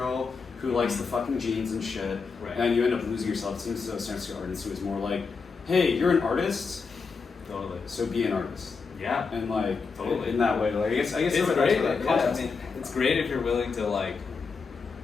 who likes the fucking jeans and shit. Right. And you end up losing yourself. It seems as though San Artist was more like, hey, you're an artist, Totally. so be an artist. Yeah. And like Totally. in that way, like I guess It's that's great. where that Yeah, context I mean, came from. it's great if you're willing to like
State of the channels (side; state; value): right; quieter; 5.0 dB